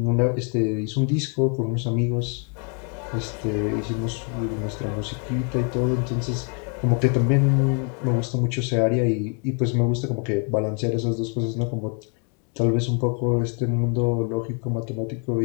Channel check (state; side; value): quieter; right; 39.5 dB